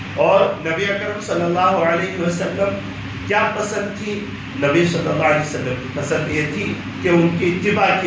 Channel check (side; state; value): both; identical; correlation 1.00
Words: اور نبی اکرم صلی اللہ علیہ وسلم کیا پسند تھی؟ نبی صلی اللہ علیہ وسلم کی پسند یہ تھی کہ ان کی اتباع